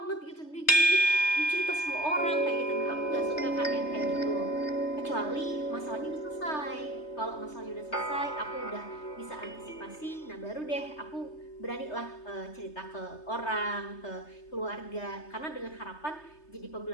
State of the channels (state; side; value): late; right; 3.3 ms